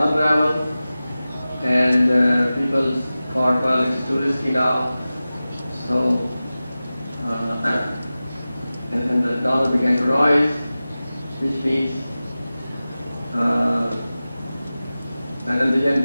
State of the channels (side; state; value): both; inverted; correlation -0.96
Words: unravel, and people thought, well, it's too risky now. So, and the dollar began to rise, which means, and then the yen